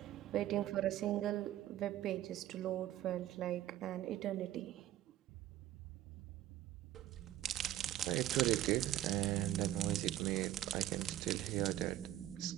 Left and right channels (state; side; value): quieter; left; 13.3 dB